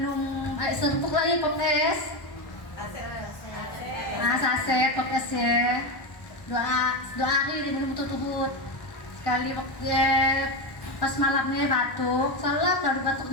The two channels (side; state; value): right; late; 1.1 ms